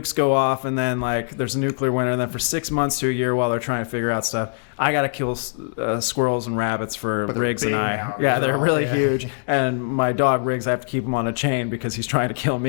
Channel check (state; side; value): silent; right; digital silence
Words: go off and then like there's a nuclear winter, and then for 6 months to a year while they're trying to figure out stuff, I gotta kill squirrels and rabbits for Briggs and I. Now, yeah, they're really huge. And my dog Briggs, I have to keep him on a chain because he's trying to kill